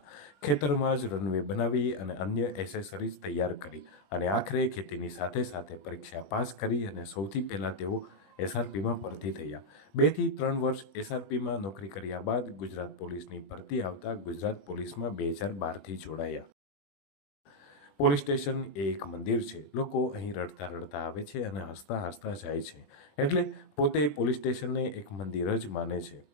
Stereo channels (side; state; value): right; late; 21 ms